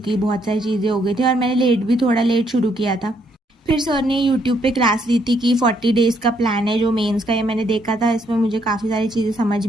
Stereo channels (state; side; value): normal; both; correlation 0.72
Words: बहुत सारी चीज़ें हो गई थी और मैंने थोड़ा लेट शुरू किया था। फिर सर ने यूट्यूब पे क्लास ली थी कि 40 डेज़ का प्लान है जो मेंस का, ये मैंने देखा था, इसमें मुझे काफ़ी सारी चीज़ें समझ